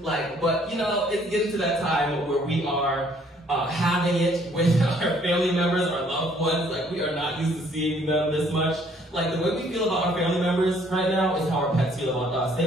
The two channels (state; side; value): normal; both; correlation 0.62